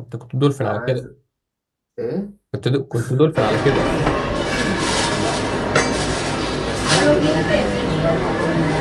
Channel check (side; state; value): both; identical; correlation 1.00